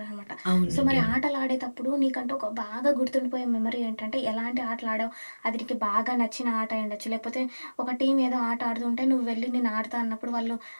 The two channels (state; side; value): inverted; both; correlation -1.00